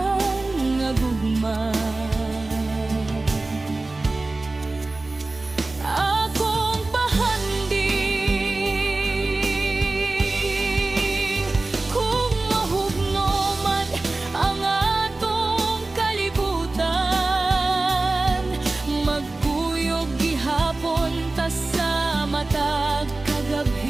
nga gugma akong pahanding. Kung mahugnoman ang atong kalibutan, magkuyog gihapon ta sa matag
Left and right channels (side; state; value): left; quieter; 3.2 dB